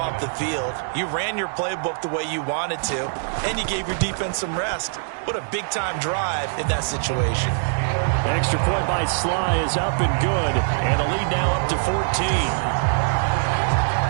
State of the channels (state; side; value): silent; left; digital silence